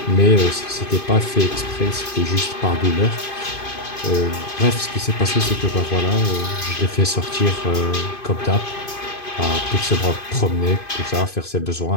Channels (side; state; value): right; late; 2.5 ms